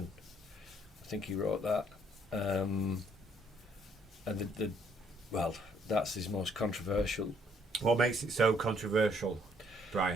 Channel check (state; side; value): normal; both; correlation 0.66